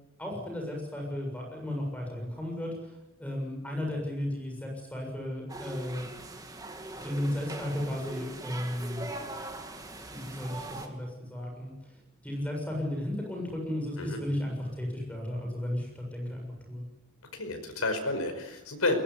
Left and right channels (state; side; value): normal; both; correlation 0.57